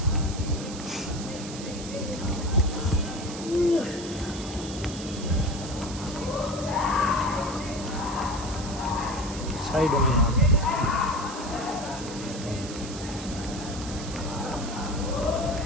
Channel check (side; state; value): right; noise; hiss, 11 dB below the sound